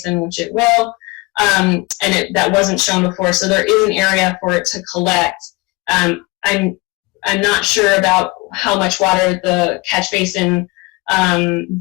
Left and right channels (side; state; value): right; quieter; 24.6 dB